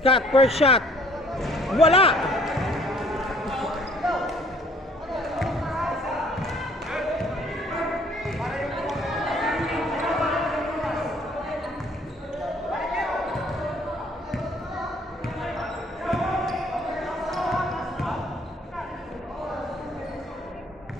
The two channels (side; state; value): both; normal; correlation 0.58